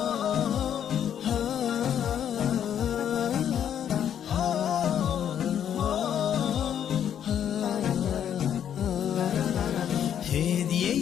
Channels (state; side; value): quieter; right; 9.4 dB